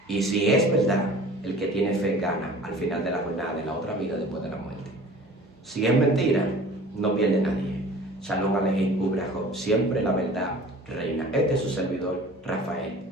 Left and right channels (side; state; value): both; normal; correlation 0.44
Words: Y si es verdad, el que tiene fe gana al final de la jornada, en la otra vida después de la muerte. Si es mentira, no pierde nadie. Shalom Alejín, Ubrajot, siempre la verdad reina. Este es su servidor, Rafael